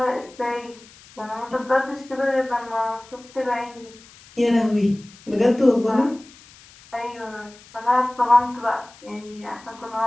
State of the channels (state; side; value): noise; left; hiss, 23 dB below the sound